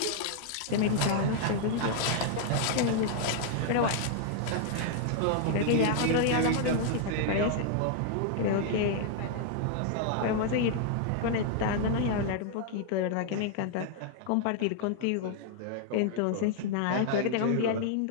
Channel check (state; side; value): different; both; correlation -0.01